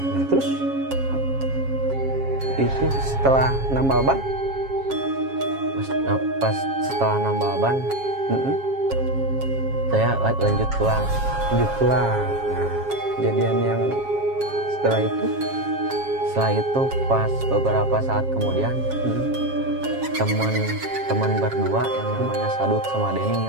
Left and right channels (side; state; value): left; late; 7.4 ms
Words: terus itu setelah nambal ban, Pas setelah nambal ban, saya lanjut pulang. Nah, kejadian yang setelah itu Pas beberapa saat kemudian, teman berdua yang namanya Sadut sama Denny